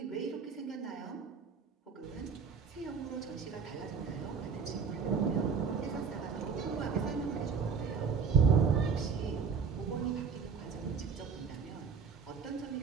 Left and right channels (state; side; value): quieter; left; 5.9 dB